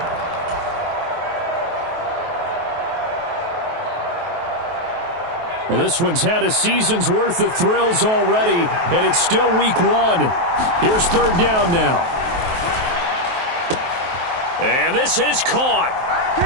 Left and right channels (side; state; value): left; late; 23 ms